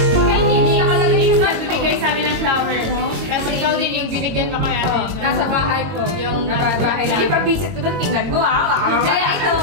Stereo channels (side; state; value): left; late; 22 ms